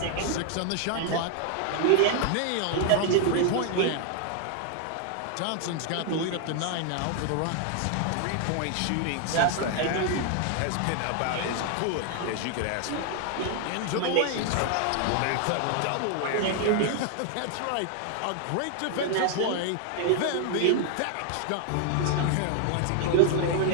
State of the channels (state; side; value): different; both; correlation 0.00